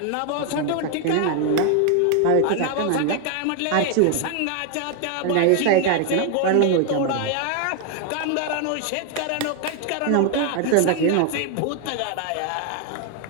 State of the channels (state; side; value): different; both; correlation 0.00